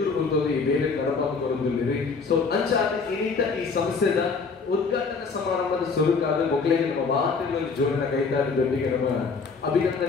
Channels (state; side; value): quieter; right; 4.8 dB